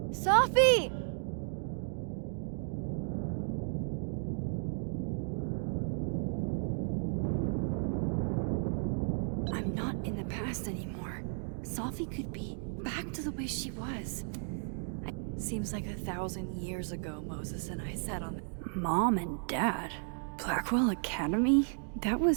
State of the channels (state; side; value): silent; left; 55 dB below the other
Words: Safi! I'm not in the past anymore. Safi could be back to the way she was. Seems like 1,000 years ago Moses and I sat on Mom and Dad. Blackwell Academy? That